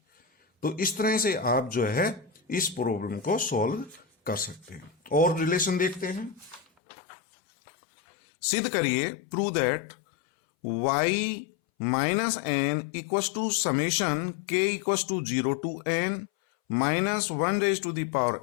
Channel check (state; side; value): drops out; right; at 6.7 s